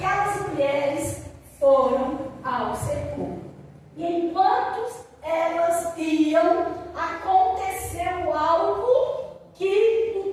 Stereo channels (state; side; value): identical; both; correlation 1.00